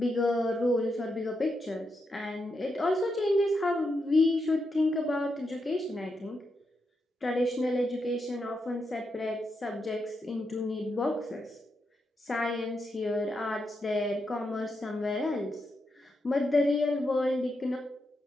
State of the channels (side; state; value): both; normal; correlation 0.84